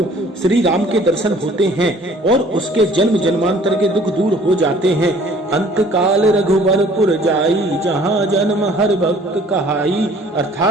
श्री राम के दर्शन होते हैं और उसके जन्म जन्मांतर के दुख दूर हो जाते हैं। अंत काल रघुवरपुर जाई, जहाँ जन्म हर भक्त कहाई।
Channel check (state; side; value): normal; both; correlation 0.54